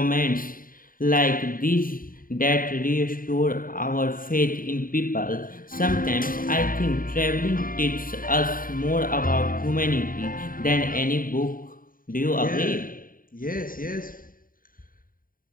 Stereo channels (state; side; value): late; right; 0.41 ms